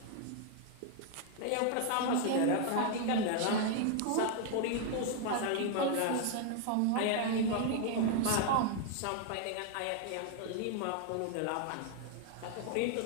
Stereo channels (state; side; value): different; both; correlation 0.00